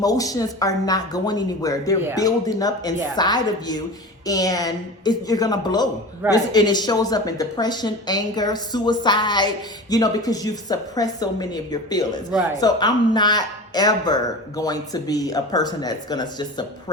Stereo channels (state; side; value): normal; both; correlation 0.32